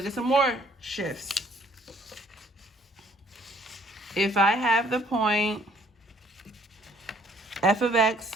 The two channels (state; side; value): normal; both; correlation 0.61